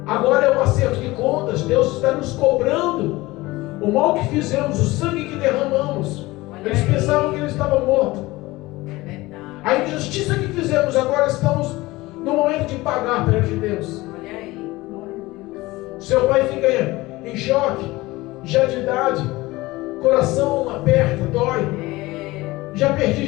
agora é um acerto de contas. Deus está nos cobrando o mal que fizemos, o sangue que derramamos. Eles pensavam que ele estava morto. A injustiça que fizemos, agora estamos no momento de pagar perante Deus. Olha aí. Seu pai fica em choque, já de idade, coração aperta, dói. Já perdi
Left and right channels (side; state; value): right; quieter; 20.0 dB